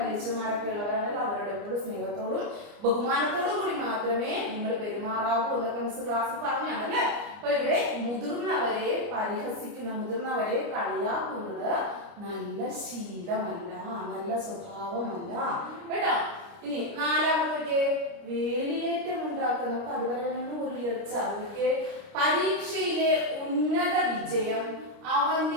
ഉള്ളവരാണെങ്കിൽ അവരോട് എപ്പോഴും സ്നേഹത്തോടും ബഹുമാനത്തോടും കൂടി മാത്രമേ നിങ്ങൾ പെരുമാറാവൂ എന്നൊക്കെ മിസ് ക്ലാസ്സിൽ പറഞ്ഞാണ് അല്ലെ. അപ്പൊ ഇവിടെ മുതിർന്നവരെ പരിഹസിക്കുന്ന, മുതിർന്നവരെ കളിയാക്കുന്നത് നല്ല ശീലമല്ല, നല്ല സ്വഭാവമല്ല കേട്ടോ. ഇനി നാലാമത്തെ വേലിയേറ്റം ഉണ്ടാക്കുക. നമുക്ക് അതുവരെ ഒരു ഉയർച്ച. പരീക്ഷയിലെ ഉന്നത വിജയം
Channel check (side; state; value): left; late; 29 ms